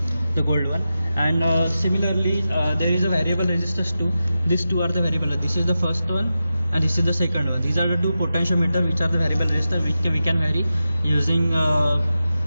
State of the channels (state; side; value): inverted; both; correlation -0.91